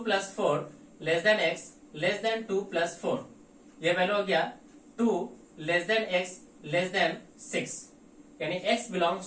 + 4 less than x less than 2 + 4। ये वैल्यू हो गया 2 less than x less than 6। यानी x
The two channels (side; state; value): both; identical; correlation 1.00